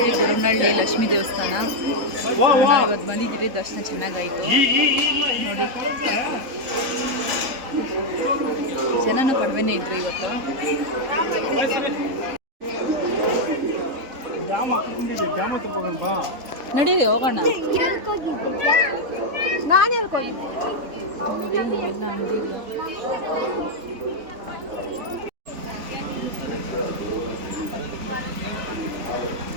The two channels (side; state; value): left; late; 3.7 ms